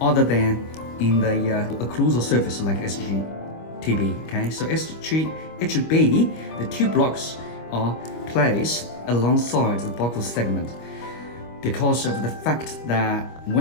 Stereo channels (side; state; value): right; late; 25 ms